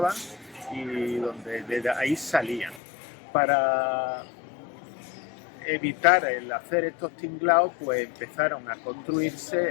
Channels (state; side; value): drops out; right; at 2.8 s